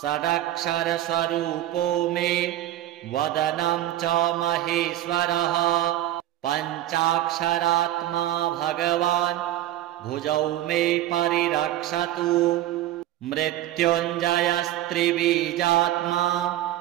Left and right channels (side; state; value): left; quieter; 13.8 dB